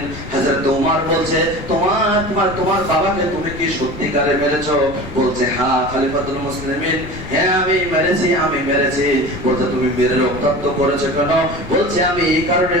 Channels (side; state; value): left; noise; rumble, 13 dB below the sound